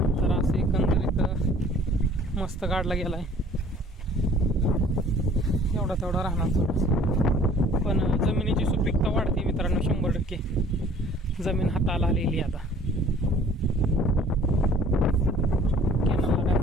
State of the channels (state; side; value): normal; both; correlation 0.52